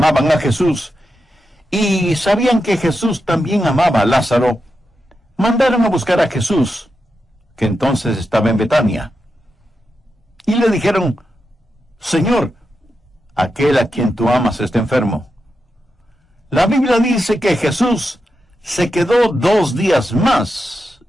a Jesús, y sabían que Jesús también amaba a Lázaro, mandaron a buscar a Jesús, que entonces estaba en Betania. Y le dijeron, Señor, aquel a quien tú amas está enfermo. La Biblia dice que Jesús se quedó 2 días más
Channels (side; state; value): both; normal; correlation 0.88